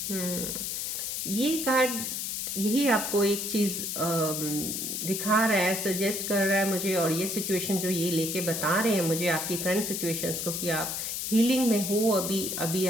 ये कार्ड यही आपको एक चीज़ दिखा रहा है, सजेस्ट कर रहा है मुझे, और ये सिचुएशन जो ये लेके बता रहे हैं मुझे आपकी करंट सिचुएशंस को कि आप हीलिंग में हो अभी, अभी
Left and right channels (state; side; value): noise; left; hiss, 3 dB below the sound